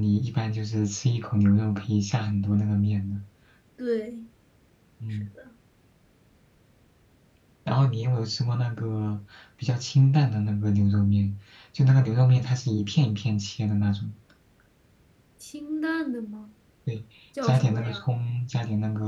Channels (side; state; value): both; identical; correlation 1.00